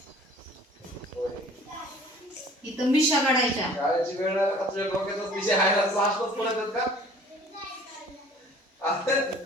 इथं मिशा काढायच्या.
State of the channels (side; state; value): both; normal; correlation 0.50